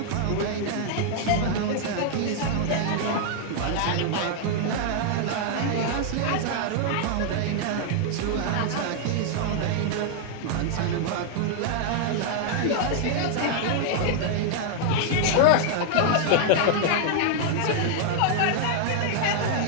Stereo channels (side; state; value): both; different; correlation 0.00